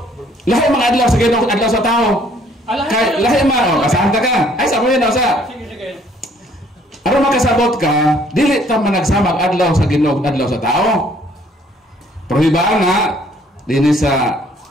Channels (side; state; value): both; normal; correlation 0.61